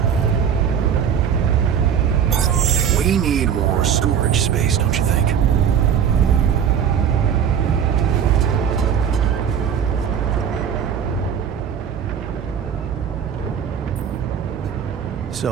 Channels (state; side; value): quieter; left; 8.1 dB